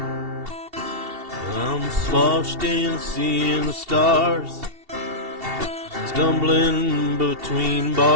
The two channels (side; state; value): left; late; 2.7 ms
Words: I'm sloshed in seeing the stars, stumbling between